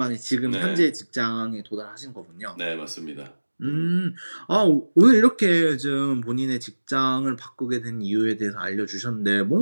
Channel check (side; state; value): both; inverted; correlation -1.00